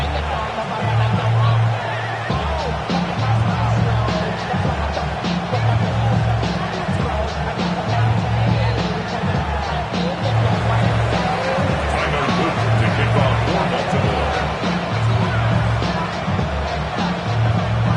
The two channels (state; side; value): identical; both; correlation 1.00